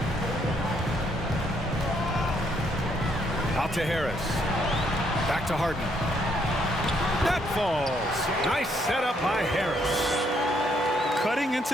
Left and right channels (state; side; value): normal; both; correlation 0.71